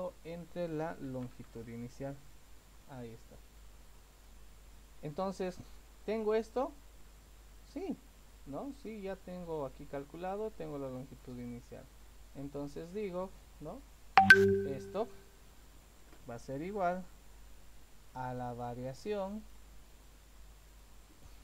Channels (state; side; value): identical; both; correlation 1.00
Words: entre la longitud inicial. Ahí está. Entonces, ¿tengo esto? Sí, ¿no? Sí, ya tengo aquí calculado, tengo la longitud inicial. Entonces digo, ¿no? Esto va a ser igual a la variación